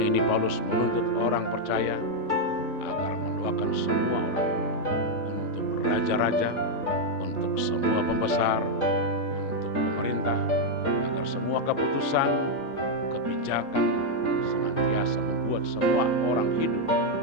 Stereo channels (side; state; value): right; late; 3.5 ms